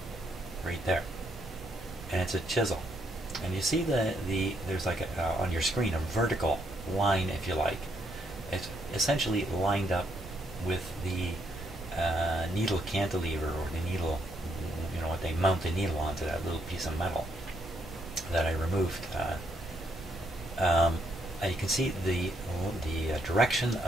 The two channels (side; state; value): both; normal; correlation 0.75